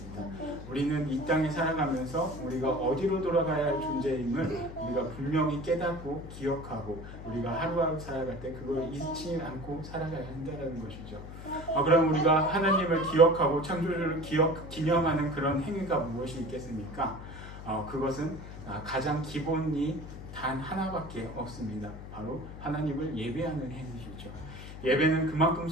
우리는 이 땅에 살아가면서 우리가 어디로 돌아가야 할 존재임을 우리가 분명히 깨닫고 기억하고 우리가 하루하루 살아갈 때 그걸 잊지 않고 살아가야 한다는 것이죠. 그럼 우리가 하나님을 기억하고 창조주를 기념하는 그런 행위가 무엇이 있겠습니까? 그것은 가장 기본이 단 하나밖에 없습니다. 바로 하나님을 예배하는 행위이죠. 예배는 그만큼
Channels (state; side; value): noise; left; hum, 12 dB below the sound